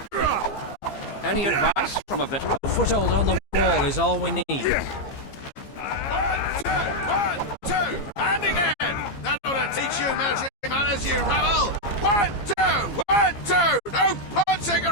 Any advice from a veteran? A foothold on the wall is all we need. One, two, and again! That ought to teach you military manners, you rebel! 1, 2, 1, 2! No punching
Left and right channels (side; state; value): right; late; 15 ms